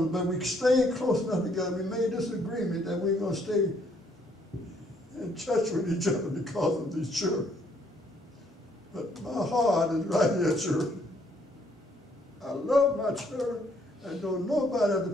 us. But we stayed close enough together. We made this agreement that we're going to stay in touch with each other because of these children. But my heart is right here, children. I love my children and don't nobody have to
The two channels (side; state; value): both; normal; correlation 0.67